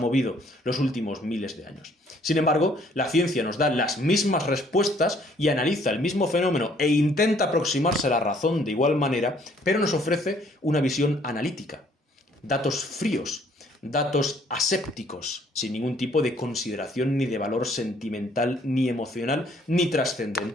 los últimos miles de años. Sin embargo, la ciencia nos da las mismas respuestas y analiza el mismo fenómeno e intenta aproximarse a la razón de igual manera, pero nos ofrece una visión analítica, datos fríos, datos asépticos, sin ningún tipo de consideración ni de valor sentimental, ni emocional, ni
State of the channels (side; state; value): both; normal; correlation 0.62